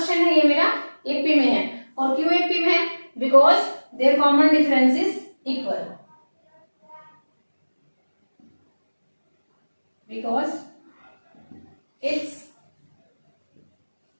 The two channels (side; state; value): both; inverted; correlation -1.00